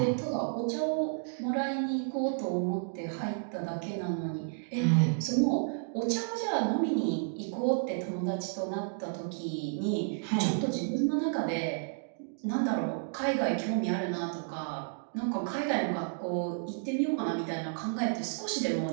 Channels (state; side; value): silent; left; digital silence